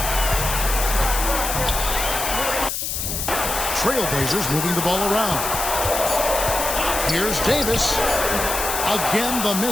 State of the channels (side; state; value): left; noise; hiss, 3 dB below the sound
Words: Trailblazers moving the ball around. Here's Davis. Again, the